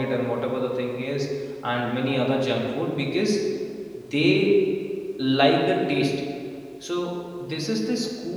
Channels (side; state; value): both; identical; correlation 1.00